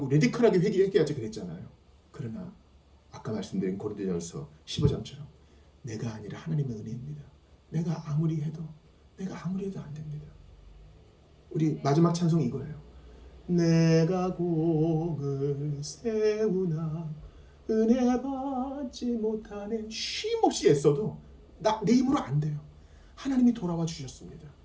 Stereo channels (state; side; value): identical; both; correlation 1.00